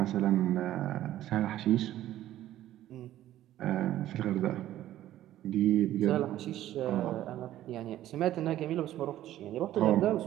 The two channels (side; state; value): left; quieter; 13.3 dB